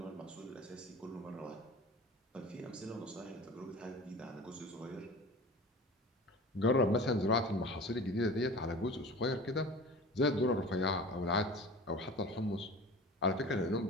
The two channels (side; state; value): both; normal; correlation 0.38